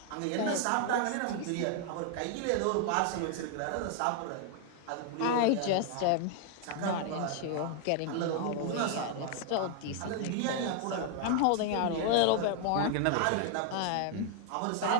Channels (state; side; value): different; both; correlation 0.00